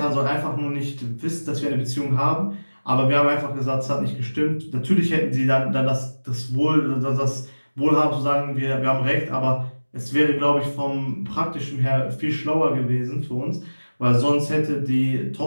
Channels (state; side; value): inverted; both; correlation -1.00